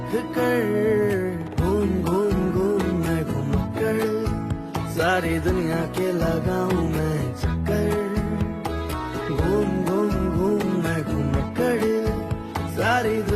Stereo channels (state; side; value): identical; both; correlation 1.00